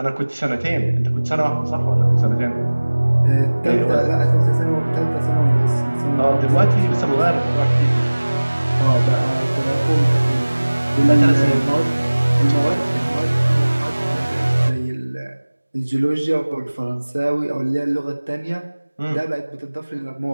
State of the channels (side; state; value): both; inverted; correlation -1.00